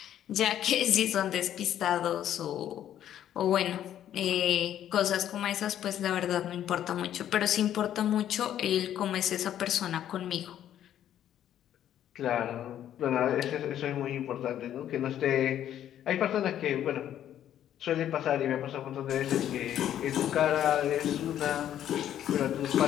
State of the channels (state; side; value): quieter; right; 11.0 dB